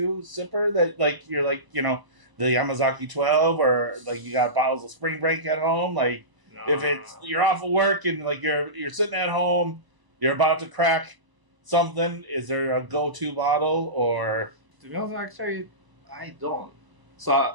sipper that, you're, the Yamazaki 12, or, you got bottles of Spring Break at home? If it's, you're off of work and, you're sitting at home, you're about to crack something, is there a go-to bottle, or... To be honest, actually, I don't. So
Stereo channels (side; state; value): left; late; 1.0 ms